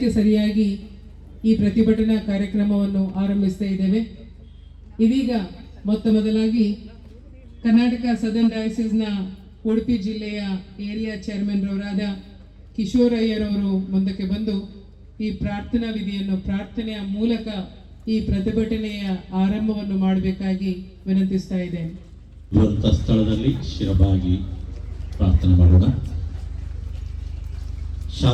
ಸರಿಯಾಗಿ ಈ ಪ್ರತಿಭಟನಾ ಕಾರ್ಯಕ್ರಮವನ್ನು ಆರಂಭಿಸ್ತಾ ಇದ್ದೇವೆ. ಇದೀಗ ಮೊತ್ತ ಮೊದಲಾಗಿ ಕರ್ನಾಟಕ ಸದರ್ನ್ ಡಯಾಸಿಸ್ನ ಉಡುಪಿ ಜಿಲ್ಲೆಯ ಏರಿಯಾ ಚೇರ್ಮನ್ ರವರಾದ ಕಿಶೋರಯ್ಯರವರು ಮುಂದಕ್ಕೆ ಬಂದು ಈ ಪ್ರಾರ್ಥನಾ ವಿಧಿಯನ್ನು ಪ್ರಾರ್ಥನೆಯ ಮೂಲಕ ಈ ಪ್ರತಿಭಟನೆಯ ಆರಂಭವನ್ನು ಮಾಡಬೇಕಾಗಿ ವಿನಂತಿಸ್ತಾ ಇದ್ದೇನೆ. ಸ್ಥಳದಲ್ಲಿ ಶಿರಬಾಗಿ ಪ್ರಾರ್ಥನೆ ಮಾಡೋಣ.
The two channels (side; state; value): both; identical; correlation 1.00